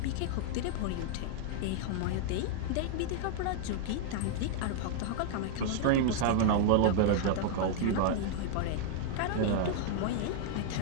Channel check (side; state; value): both; different; correlation -0.01